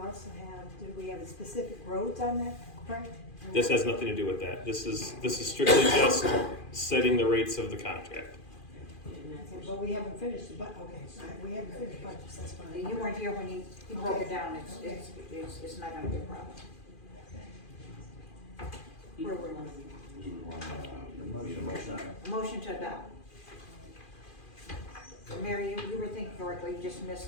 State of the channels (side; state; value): right; late; 2.4 ms